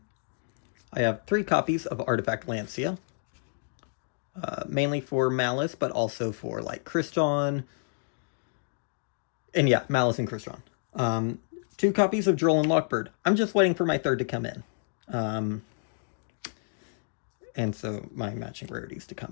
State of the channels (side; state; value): right; silent; digital silence